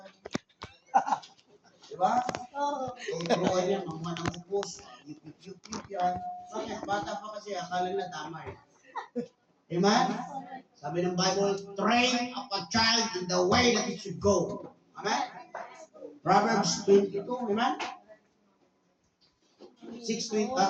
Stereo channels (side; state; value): both; identical; correlation 1.00